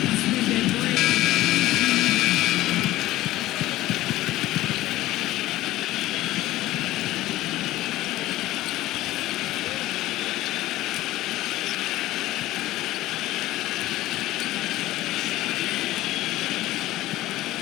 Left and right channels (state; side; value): quieter; right; 16.2 dB